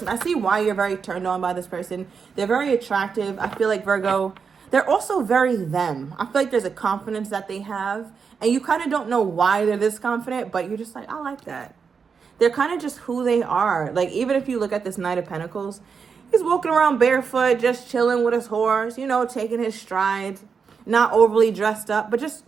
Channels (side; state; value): left; quieter; 5.8 dB